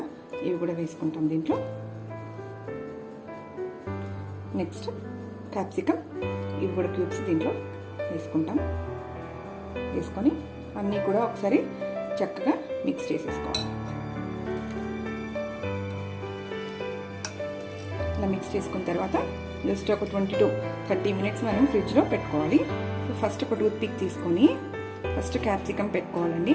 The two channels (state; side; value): identical; both; correlation 1.00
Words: ఇవి కూడా వేసుకుంటాం దీంట్లో. నెక్స్ట్ క్యాప్సికమ్, ఇవి కూడా క్యూబ్స్ దీంట్లో వేసుకుంటాం. వేసుకొని అన్నీ కూడా ఒకసారి చక్కగా మిక్స్ చేసేసుకోవాలి. ఇలా మిక్స్ చేసుకున్న తర్వాత జస్ట్ ఒక 20 to 30 మినిట్స్ మనం ఫ్రిడ్జ్లో పెట్టుకోవాలి. సో ఫస్ట్ ఒక టూత్ పిక్ తీసుకొని ఫస్ట్ క్యాప్సికమ్ పెట్టుకోవాలండి.